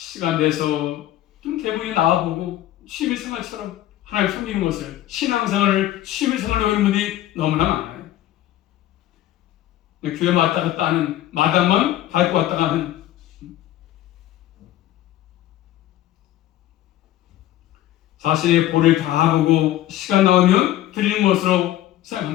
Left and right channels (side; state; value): right; quieter; 13.6 dB